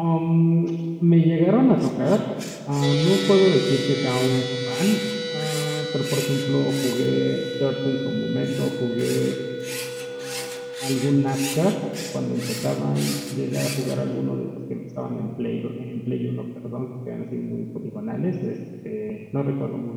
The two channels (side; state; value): both; identical; correlation 1.00